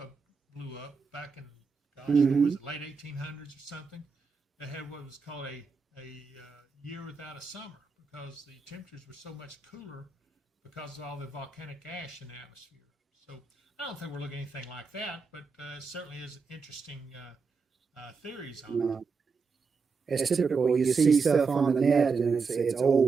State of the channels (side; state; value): left; quieter; 5.0 dB